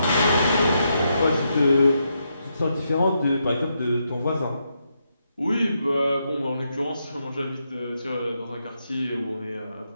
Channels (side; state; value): both; inverted; correlation -0.81